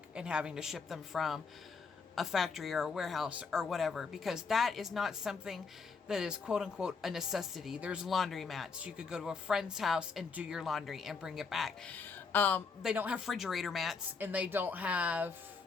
and having to ship them from a factory or a warehouse or whatever, because that is not something that is quote unquote a necessity. There's laundry mats. You could go to a friend's house and do your laundry and bring it back. They don't have refrigerator mats, and they don't have,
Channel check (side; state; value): right; quieter; 5.0 dB